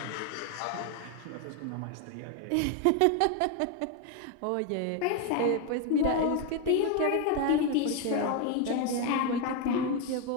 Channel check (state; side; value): different; both; correlation 0.01